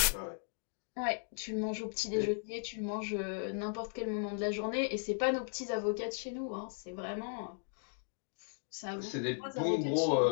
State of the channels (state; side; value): silent; right; digital silence